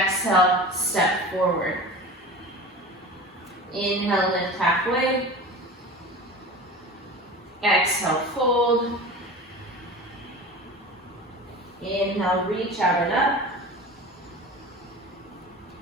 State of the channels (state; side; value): normal; both; correlation 0.34